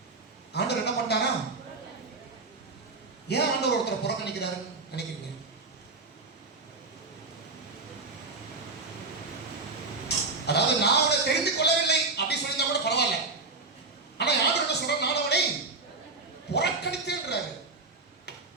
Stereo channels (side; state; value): left; quieter; 3.7 dB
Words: ஆண்டவர் என்ன பண்ணாரா? ஏன் ஆண்டவர் ஒருத்தரை புறக்கணிக்கிறாருன்னு நினைக்கிறீங்க? அதாவது நான் அவனை தெரிந்து கொள்ளவில்லை அப்படி சொல்லியிருந்தா கூட பரவாயில்ல. ஆனா ஆண்டவர் என்ன சொல்றாரு? நான் அவனை புறக்கணித்தேன்றாரு.